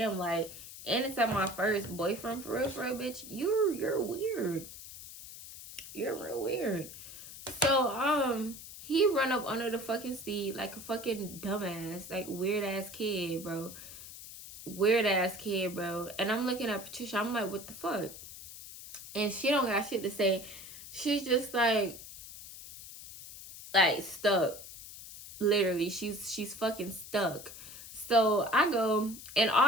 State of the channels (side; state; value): left; noise; hiss, 14 dB below the sound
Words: like, and it's at my first boyfriend, for real, bitch, you're weird. You're real weird. So, he run up under the fucking seat like a fucking dumbass, like weird ass kid, bro. Weird ass kid, bro. And I'm looking at Patricia, I'm like, what the fuck? And she don't got shit to say. She's just like stuck. Literally, she's fucking stuck. So I go, and